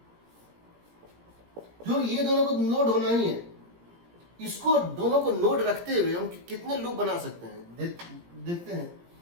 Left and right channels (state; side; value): late; left; 17 ms